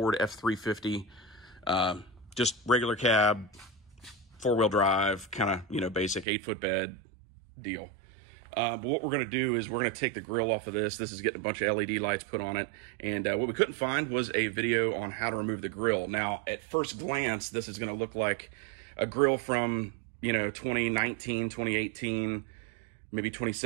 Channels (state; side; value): drops out; left; at 6.2 s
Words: F350, just regular cab, four-wheel drive, kind of, basic 8-foot bed deal. But what we're going to do is we're going to take the grill off of this. This is getting a bunch of LED lights put on it. And what we couldn't find was a video on how to remove the grill. Now, at first glance, this is going to look like a grill from, 2019, 2018, maybe